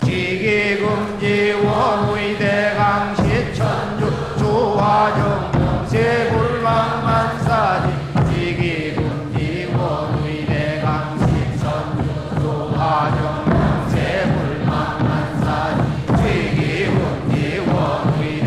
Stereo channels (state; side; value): identical; both; correlation 1.00